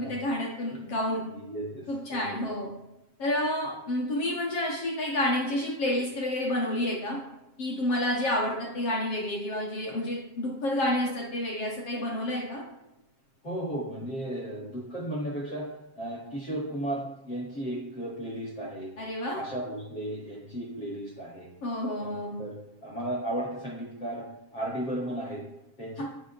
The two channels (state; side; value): late; right; 7.5 ms